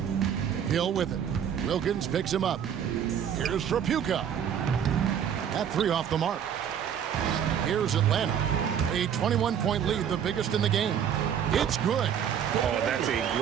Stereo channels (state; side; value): quieter; left; 8.7 dB